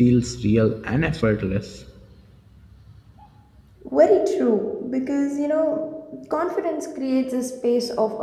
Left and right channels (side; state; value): both; identical; correlation 1.00